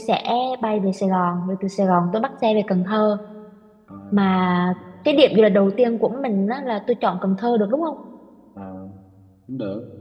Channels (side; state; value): both; identical; correlation 1.00